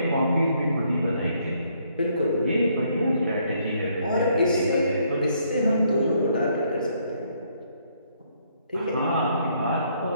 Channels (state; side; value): inverted; both; correlation -0.70